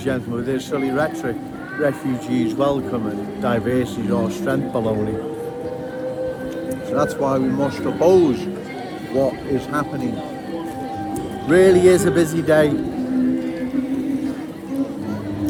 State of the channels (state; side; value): identical; both; correlation 1.00